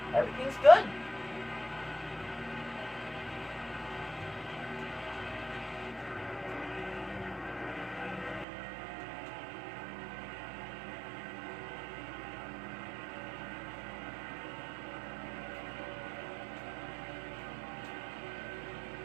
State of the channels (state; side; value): drops out; left; at 8.5 s